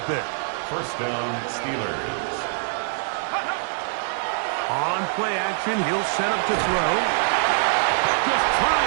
bit. First down, Steelers. On play action, he'll set up to throw. Just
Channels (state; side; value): silent; left; digital silence